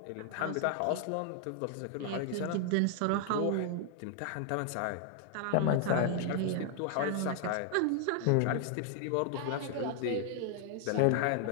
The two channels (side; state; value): both; different; correlation 0.00